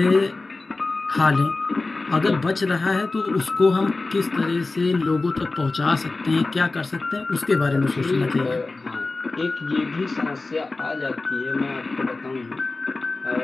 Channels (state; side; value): quieter; right; 3.4 dB